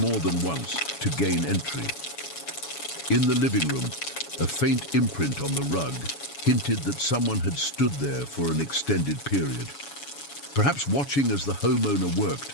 than once to gain entry. In the living room, a faint imprint on the rug hinted that someone had stood there for an extended period, perhaps watching as the homeowner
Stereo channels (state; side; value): late; right; 7.1 ms